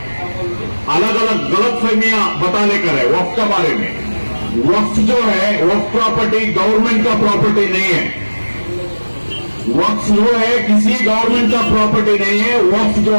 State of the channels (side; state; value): both; inverted; correlation -1.00